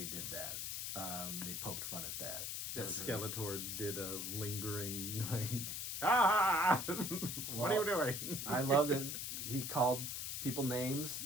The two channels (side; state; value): left; noise; hiss, 3 dB below the sound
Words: did that. They poked fun at that. That Skeletor really... did a lingering, like, what are you doing? I loved it. He called people names.